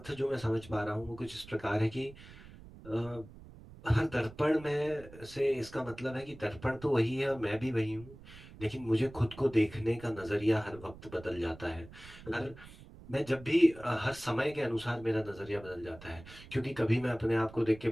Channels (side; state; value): right; noise; rumble, 18 dB below the sound